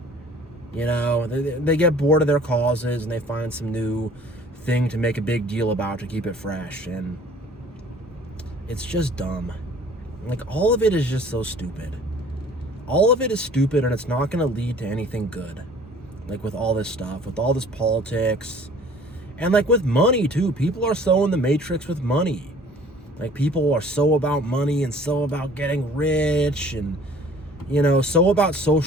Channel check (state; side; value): normal; both; correlation 0.51